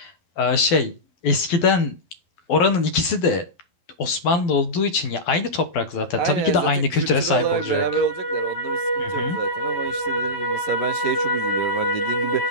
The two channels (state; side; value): late; right; 12 ms